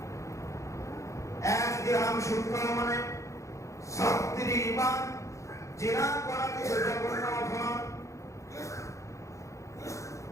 1 দিরহাম সুদ খাওয়া মানে 36 বার জিনা করা, জঘন্য অপরাধ।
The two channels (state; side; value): late; right; 0.15 ms